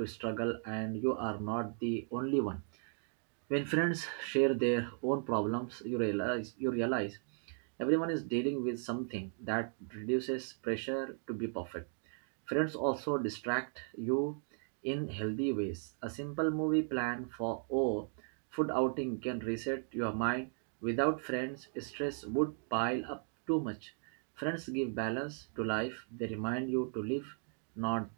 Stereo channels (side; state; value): left; silent; 53 dB below the other